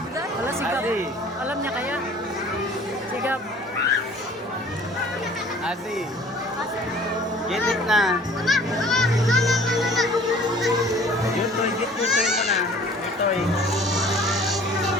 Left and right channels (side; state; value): both; normal; correlation 0.50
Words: Wala, sigap. Azi. Alam niya kaya. Sigap. Azi, get it na. Yutoy, get yutoy mo na. Yutoy.